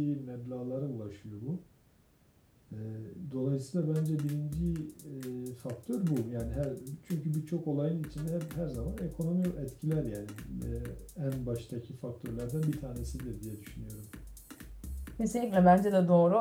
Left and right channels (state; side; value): identical; both; correlation 1.00